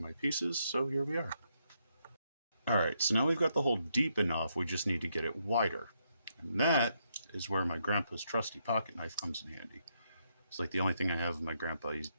my pieces, so here we are. Alright, so now we've got the hole deep enough, we just need to get it wider. And that is where my grandpa's trusty pocket knife comes in handy. It's like the only thing I have of my grandpa. He's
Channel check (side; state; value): both; inverted; correlation -0.78